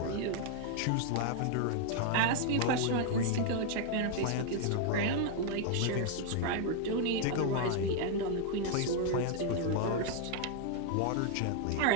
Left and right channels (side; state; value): both; different; correlation 0.00